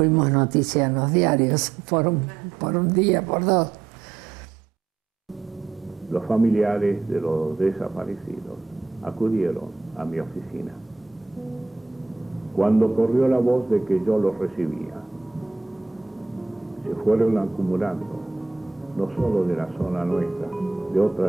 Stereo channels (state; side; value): quieter; left; 4.4 dB